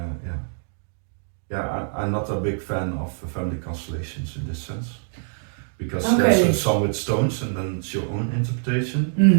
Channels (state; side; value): silent; left; digital silence